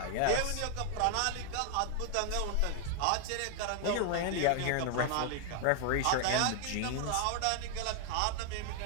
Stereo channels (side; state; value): both; different; correlation 0.00